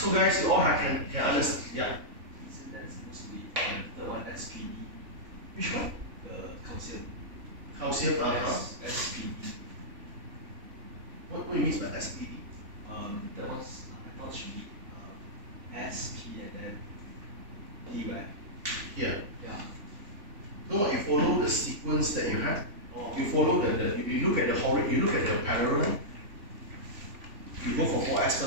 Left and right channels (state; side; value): late; left; 3.4 ms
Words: guys, you all can understand. Yeah. Isn't that supposed to be the one SPD? Which one? The calcium. Calcium, SPD. What do you mean by SPD? That was, I thought it should be SP and then D, right? Yeah. Yeah. No, you follow the sequence that you have. Oh. You follow you look at the parallel. You go for 4S